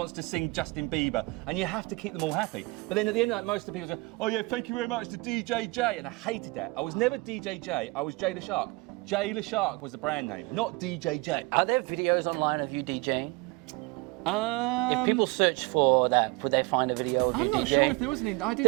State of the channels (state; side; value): quieter; left; 25.1 dB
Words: to sing Justin Bieber, and you have to keep them all happy. But then at the end of the night, most of the people say, oh yeah, thank you very much to DJ J. And I hated that. I was never DJ J, I was Jailer Shark. Jailer Shark was the brand name, not DJ J. Are there videos online of you DJing? If people search for that, would they find a video of you DJing? I'm not sure if there was any.